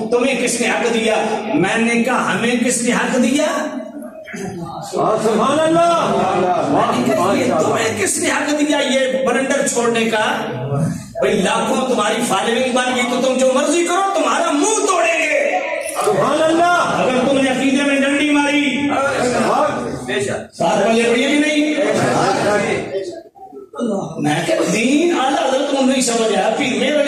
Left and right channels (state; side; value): identical; both; correlation 1.00